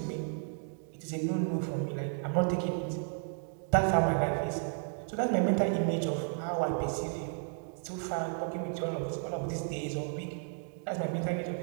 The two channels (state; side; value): silent; left; 56 dB below the other